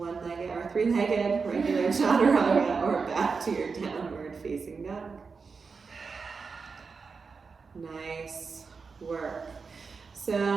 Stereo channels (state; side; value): quieter; left; 5.0 dB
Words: or three-legged regular chaturanga, or back to your downward facing dog. Nice work. So